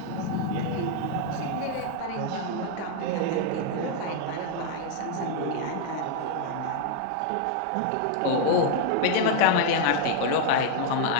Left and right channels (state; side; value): different; both; correlation 0.00